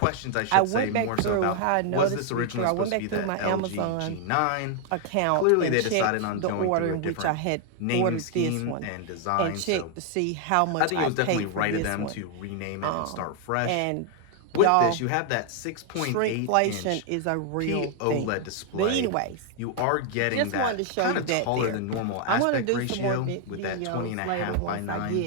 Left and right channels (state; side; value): different; both; correlation 0.00